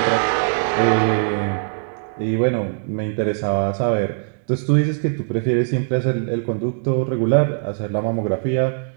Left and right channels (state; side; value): silent; left; digital silence